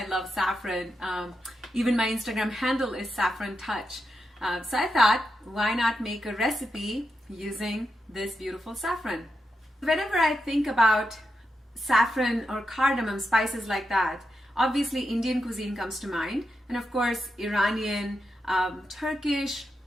love saffron. Even my Instagram handle is Saffron Touch. So I thought, why not make a recipe using this beautiful saffron? Whenever I think about saffron or cardamom, spices like that, obviously Indian cuisine comes to mind, and of course Iranian, Turkish,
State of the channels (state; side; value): normal; both; correlation 0.86